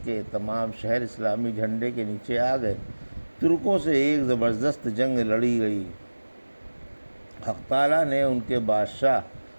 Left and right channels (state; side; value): inverted; both; correlation -1.00